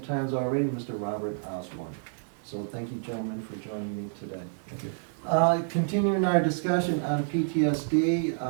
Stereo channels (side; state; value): left; silent; digital silence